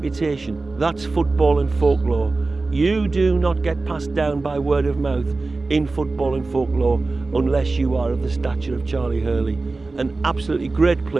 That's football and folklore. You do not get passed down by word of mouth in football and folklore unless you are of the stature of Charlie Hurley. An absolutely great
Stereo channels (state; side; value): quieter; left; 3.5 dB